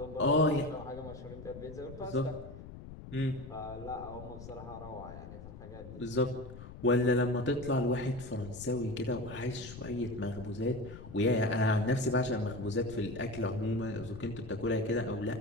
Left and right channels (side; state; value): left; noise; rumble, 13 dB below the sound